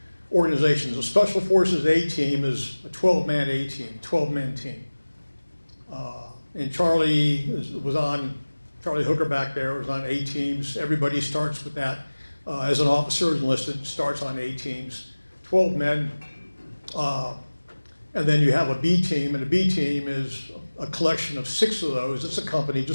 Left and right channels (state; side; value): inverted; both; correlation -1.00